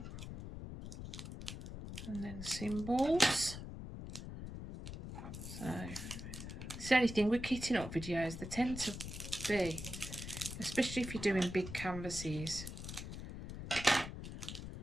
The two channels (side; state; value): left; noise; rumble, 8 dB below the sound